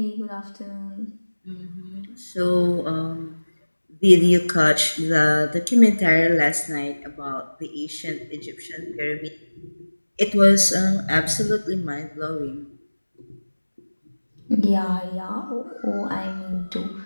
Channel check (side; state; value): both; inverted; correlation -1.00